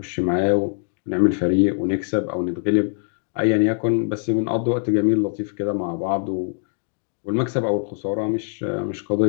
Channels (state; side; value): silent; right; 63 dB below the other